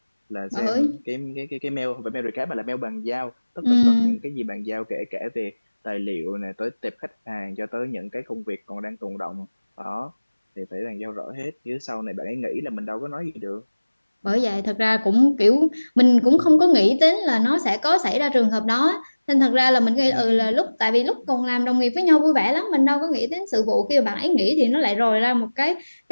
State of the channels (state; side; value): inverted; both; correlation -1.00